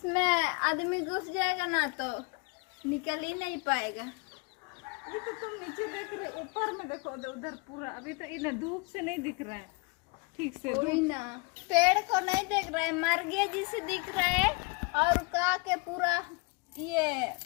आदमी घुस जाएगा ना तो निकल ही नहीं पाएगा। ये तो तुम नीचे देख रहे, ऊपर में देखो उधर पूरा। अभी तो ये ना धूप से नहीं दिख रहा है ठीक से। कोई ना पेड़ को नहीं देख रहा है, मर गया जिसे दिख रहा है। और का के पूरा ये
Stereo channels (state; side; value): quieter; right; 28.7 dB